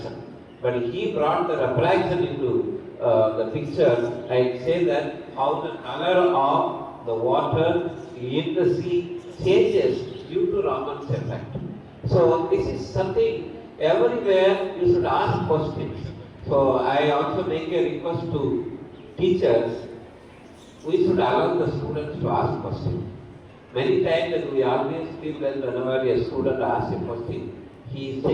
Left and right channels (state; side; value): identical; both; correlation 1.00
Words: But he brought the refraction into the picture and say that how the color of the water in the sea changes due to Raman's effect. So this is something everywhere you should ask questions. So I also make a request to teachers, we should allow the students to ask questions. Many times we always feel that whenever a student asks a question, he is